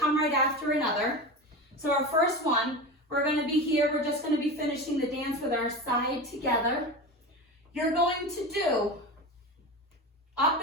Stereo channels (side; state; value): both; normal; correlation 0.26